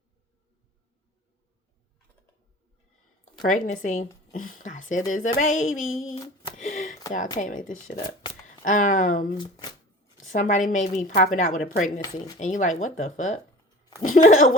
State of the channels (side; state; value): both; normal; correlation 0.40